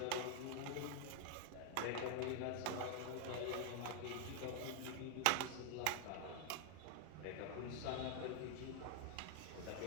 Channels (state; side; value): different; both; correlation 0.00